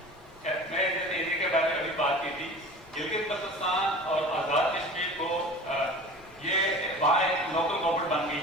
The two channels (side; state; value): both; normal; correlation 0.38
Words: میں جب area کے بارے میں ابھی بات کی تھی, گلگت بلتستان اور آزاد کشمیر کو یہ وہاں ایک لوکل گورنمنٹ بن گئی